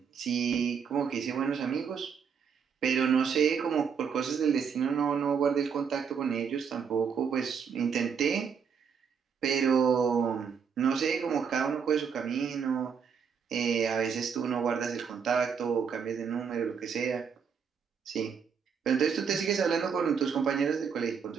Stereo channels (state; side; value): quieter; left; 6.6 dB